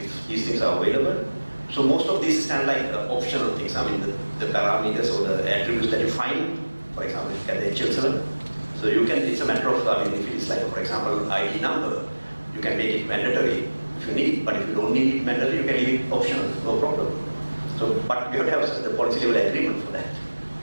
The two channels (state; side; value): inverted; both; correlation -1.00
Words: these things are available. So most of these stand like optional things. I mean, the parameters or the attributes that you find, for example, you get the HL7. So you can, it's a matter of, I mean, if it is like, for example, ID number, you can make it mandatory if you need, but if you don't need it mandatory, you can leave it optional, no problem. So, but you have to have the policy level agreement for that.